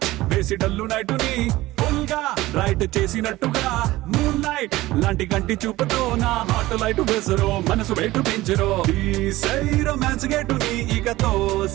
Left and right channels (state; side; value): quieter; left; 17.8 dB